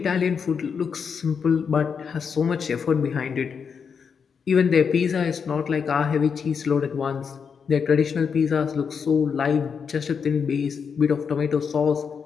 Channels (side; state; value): right; quieter; 6.3 dB